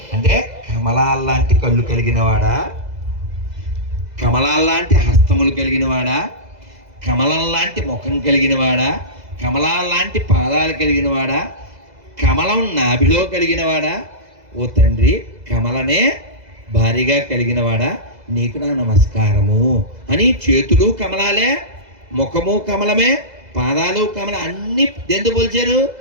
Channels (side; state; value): left; late; 2.0 ms